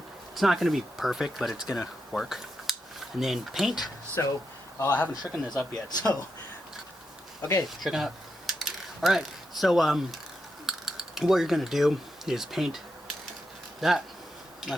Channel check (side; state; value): both; normal; correlation 0.85